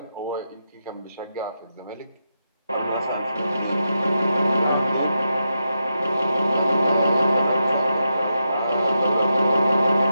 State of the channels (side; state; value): both; inverted; correlation -0.85